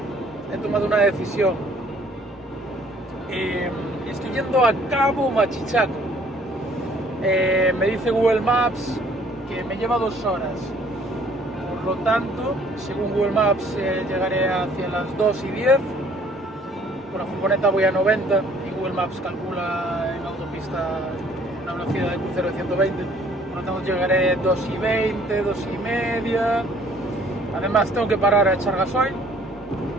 he tomado una decisión. Estoy yendo a Cabo Machichaco. Me dice Google Maps que me lleva 2 horas. Por lo tanto, según Google Maps, llegaré hacia las 2:10. Con la furgoneta voy a 90 y Google Maps calcula en autopista una velocidad de crucero de 120. Por lo tanto, llegaré 2:20, 2:30. Además, tengo que parar a echar gasoil,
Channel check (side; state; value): both; normal; correlation 0.58